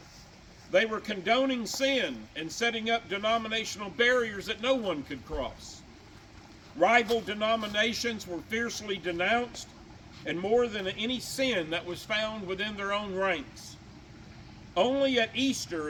They were condoning sin and setting up denominational barriers that no one could cross. Rival denominations were fiercely denounced, and more than any sin that was found within their own ranks. Only at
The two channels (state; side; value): identical; both; correlation 1.00